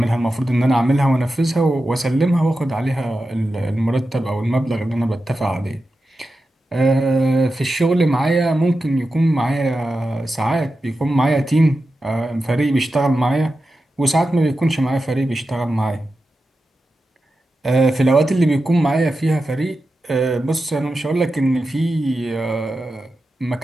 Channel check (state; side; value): normal; both; correlation 0.91